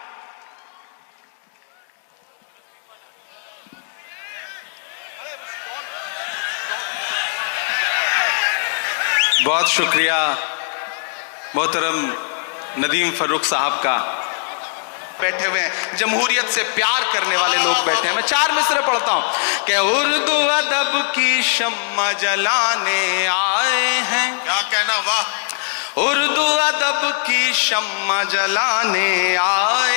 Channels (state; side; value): silent; right; digital silence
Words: बहुत शुक्रिया मोहतरम नदीम फरूक साहब का। बैठे हुए हैं, जमहूरियत से प्यार करने वाले लोग बैठे हैं। मैं 4 मिसरे पढ़ता हूं कि उर्दू अदब की शम्मा जलाने आए हैं। क्या कहना, वाह। उर्दू अदब की शम्मा जलाने